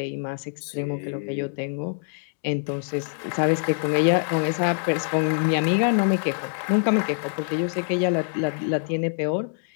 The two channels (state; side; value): silent; right; digital silence